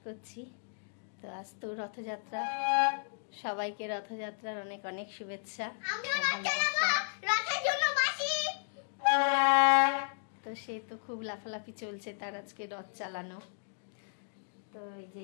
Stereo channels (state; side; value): silent; right; digital silence